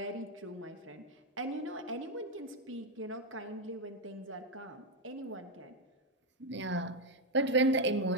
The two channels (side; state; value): both; normal; correlation 0.05